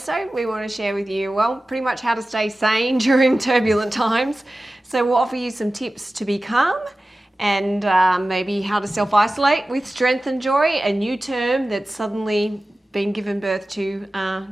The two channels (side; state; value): both; normal; correlation 0.96